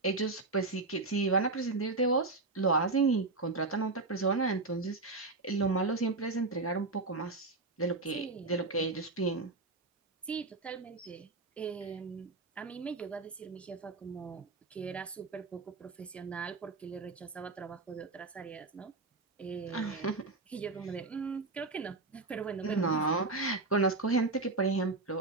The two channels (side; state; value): left; quieter; 3.5 dB